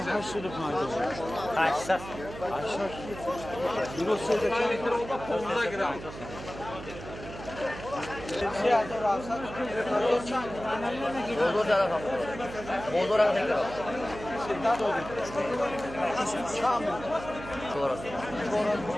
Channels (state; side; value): noise; right; hum, 12 dB below the sound